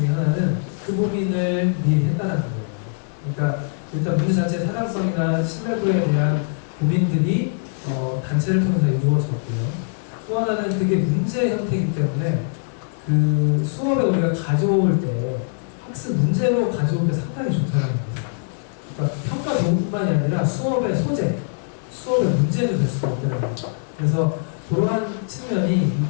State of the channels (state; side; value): silent; right; digital silence